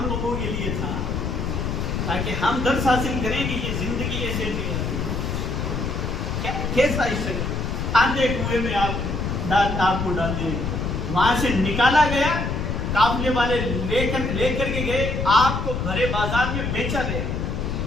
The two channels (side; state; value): left; noise; rumble, 2 dB below the sound